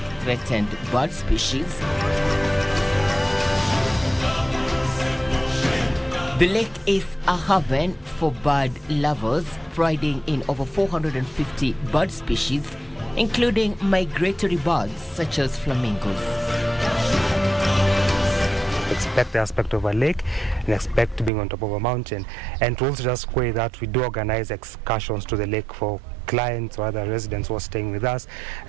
threatened bird species. The lake is a haven for bird lovers, priding in over 450 bird species, including migratory birds such as flamingos. Expect the aspect of a lake and expect being on top of a mountain, and to also just say that we do organize excursions to the lake for clients or other residents who are staying with us,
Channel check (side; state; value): left; drops out; at 21.3 s